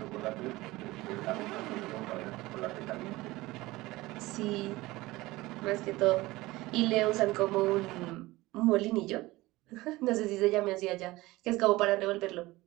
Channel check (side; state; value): left; quieter; 19.5 dB